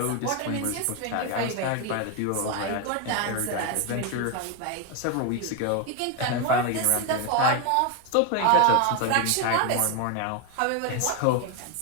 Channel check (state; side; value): different; both; correlation 0.01